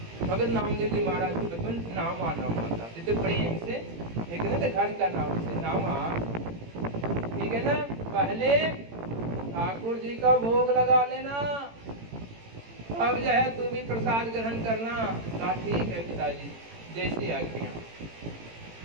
भगत नामदेव जी महाराज को बचपन नामा नामा था, तो प्रेम से एक ना घर का नाम से नामा, ठीक है ना। पहले ठाकुर जी का भोग लगा लेना, अब जो है तू भी प्रसाद ग्रहण करना। कहा ठीक है पिताजी, जैसी आज्ञा।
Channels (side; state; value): left; late; 18 ms